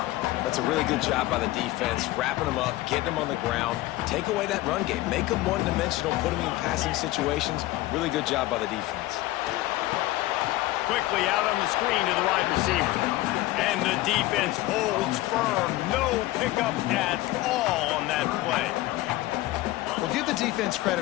That's a really good job by the defense, wrapping them up, getting them on the ground, take away that run game, make them one-dimensional, put them in passing situations. Really good job by the defense. Quickly out on the screen to the wide receiver. And the defense holds firm. No pickup at all on that play. Well, give the defense credit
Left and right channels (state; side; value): quieter; right; 17.4 dB